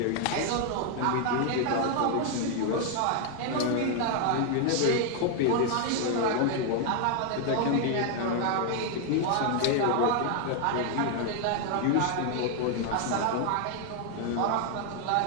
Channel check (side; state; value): both; different; correlation 0.00